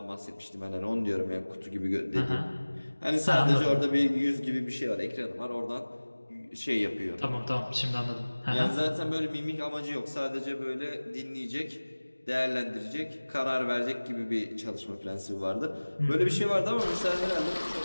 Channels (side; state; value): both; inverted; correlation -1.00